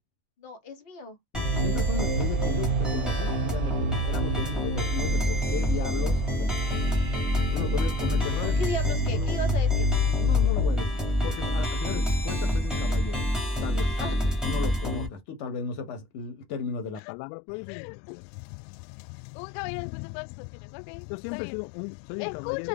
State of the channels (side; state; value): right; drops out; at 17.0 s